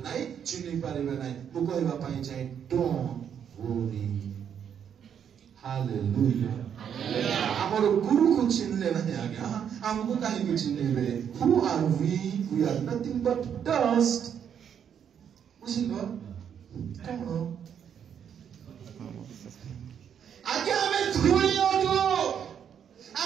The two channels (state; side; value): quieter; left; 8.4 dB